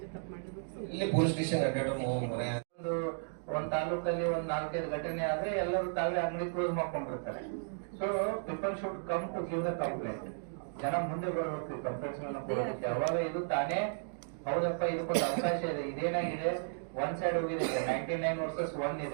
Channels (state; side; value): silent; left; digital silence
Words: ಪೊಲೀಸ್ ಸ್ಟೇಷನ್ ಒಂದ್ ತಾಲೂಕಲ್ಲಿ ಒಂದ್ 4-5 ಘಟನೆ ಆದ್ರೆ ಎಲ್ಲರೂ ತಾವೇ ಅಂಗಡಿ ಕ್ಲೋಸ್ ಮಾಡ್ಕೊಂಡಿರ್ತಾರೆ. So people should come to give the complaint. ಜನ ಮುಂದೆ ಬರಬೇಕು ಕಂಪ್ಲೇಂಟ್ಸ್ ಕೊಡೋದಕ್ಕೆ. ಅವಾಗ ಇದು ತಾನೇ ಹೌದಪ್ಪ ಇದಕ್ಕೊಂದು ಅವಕಾಶ ಇದೆ. ಇದೇನಾಗಿದೆ, ಒನ್ ಸೈಡ್ ಹೋಗಿದೆ. 99 ವರ್ಸಸ್ 1